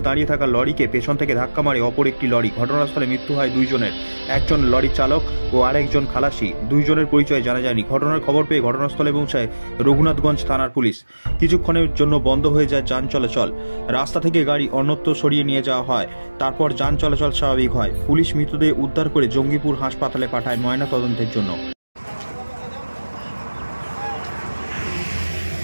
দাঁড়িয়ে থাকা লরিকে পেছন থেকে ধাক্কা মারে অপর একটি লরি। ঘটনাস্থলে মৃত্যু হয় দুইজনের, একজন লরি চালক ও আরেকজন খালাসি। দুইজনের পরিচয় জানা যায়নি। ঘটনার খবর পেয়ে ঘটনাস্থলে পৌঁছায় রঘুনাথগঞ্জ থানার পুলিশ। কিছুক্ষণের জন্য বন্ধ হয়ে যায় যান চলাচল। রাস্তা থেকে গাড়ি অন্যত্র সরিয়ে নিয়ে যাওয়া হয়। তারপর যান চলাচল স্বাভাবিক হয়। পুলিশ মৃতদেহ উদ্ধার করে জঙ্গিপুর হাসপাতালে পাঠায় ময়না তদন্তের জন্য।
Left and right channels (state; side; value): inverted; both; correlation -1.00